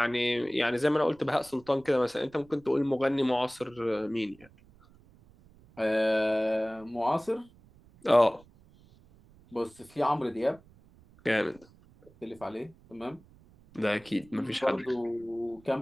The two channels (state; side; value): noise; right; rumble, 26 dB below the sound